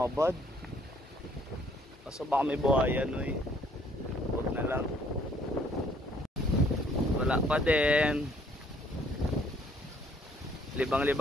Kaso baka may buhayan eh. Huwag na lang. Wala pa din.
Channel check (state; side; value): normal; both; correlation 0.62